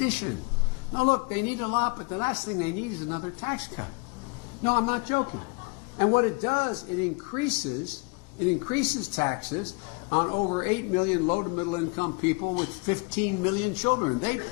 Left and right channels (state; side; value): quieter; right; 30.4 dB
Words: Now look, they need a lot, but the last thing they need is another tax cut. No, I'm not joking. And what it does, it increases taxes on over 8 million low to middle income people with 15 million children. They